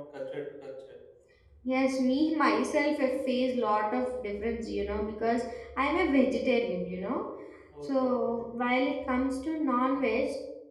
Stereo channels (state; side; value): identical; both; correlation 1.00